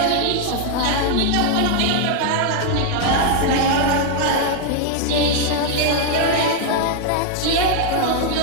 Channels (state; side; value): different; both; correlation 0.00